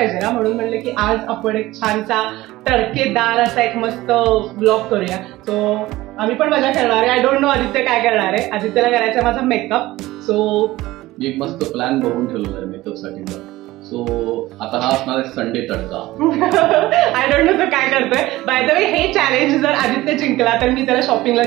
ना, म्हणून म्हणलं की आज आपण एक छानसा तडकेदार असा एक मस्त ब्लॉग करूया. सो आम्ही पण मजा करणार आहे. आय डोंट नो आदित्य काय करणार आहे. आदित्यला करायचा माझा मेकअप. सो एक मस्त प्लॅन बघून ठेवलेला आहे मेकअप साठीचा. सो आता हा असणार आहे Sunday tadka. I don't know तो काय करतोय. बाय द वे हे चॅलेंज जर आदित्य जिंकला तर मी त्याला शॉपिंगला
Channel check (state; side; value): quieter; left; 17.7 dB